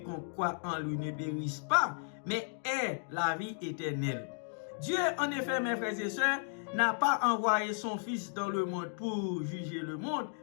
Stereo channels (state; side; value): silent; right; digital silence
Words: croit en lui ne périsse pas, mais ait la vie éternelle. Dieu, en effet, mes frères et sœurs, n'a pas envoyé son Fils dans le monde pour juger le monde,